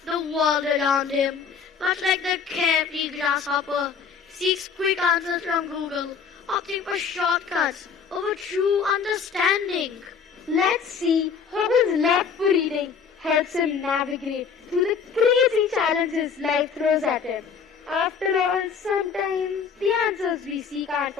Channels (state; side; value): quieter; right; 6.2 dB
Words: the world around him, much like the carefree grasshopper, seeks quick answers from Google, opting for shortcuts over true understanding. Let's see how his love for reading helps him navigate through the crazy challenges life throws at him. After all, sometimes the answers we seek aren't